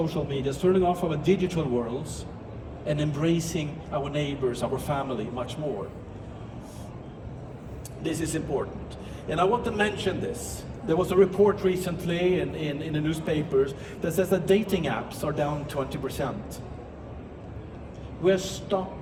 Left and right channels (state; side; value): identical; both; correlation 1.00